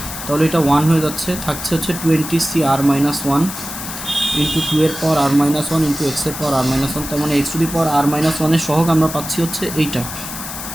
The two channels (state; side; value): noise; left; hiss, 9 dB below the sound